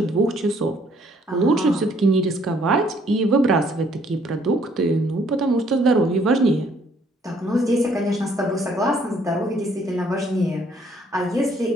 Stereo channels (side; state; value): both; normal; correlation 0.64